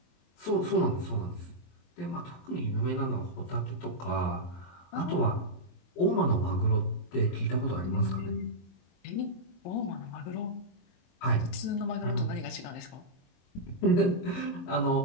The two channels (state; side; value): late; right; 23 ms